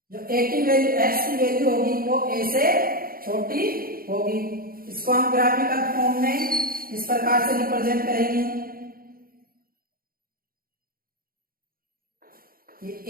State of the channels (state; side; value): late; left; 0.42 ms